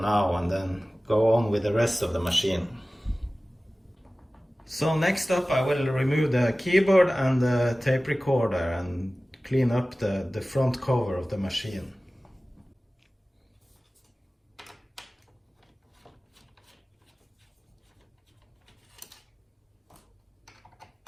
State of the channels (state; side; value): normal; both; correlation 0.97